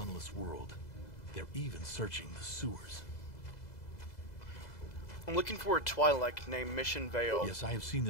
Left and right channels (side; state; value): right; late; 2.0 ms